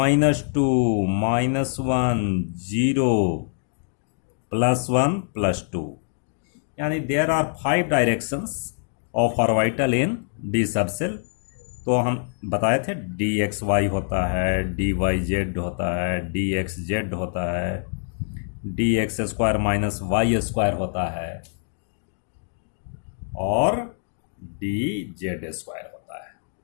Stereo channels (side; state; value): right; silent; digital silence